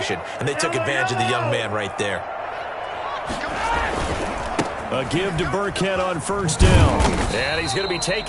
and they took advantage of the young man right there. A give to Burkhead on first down. And he's going to be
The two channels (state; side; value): identical; both; correlation 1.00